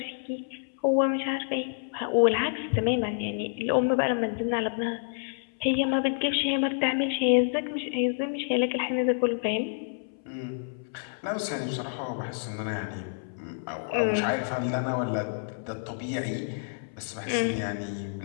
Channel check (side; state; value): right; silent; 59 dB below the other